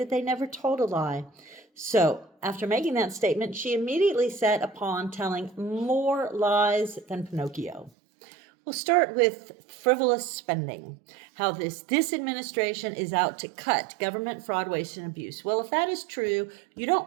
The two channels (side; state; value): left; drops out; at 7.9 s